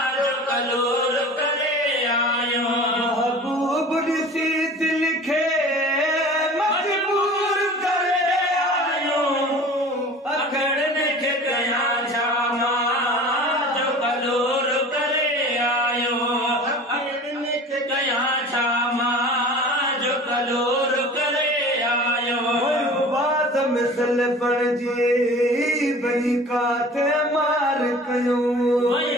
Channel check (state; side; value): normal; both; correlation 0.41